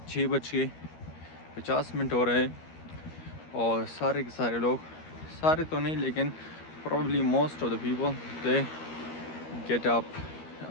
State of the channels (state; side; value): late; right; 13 ms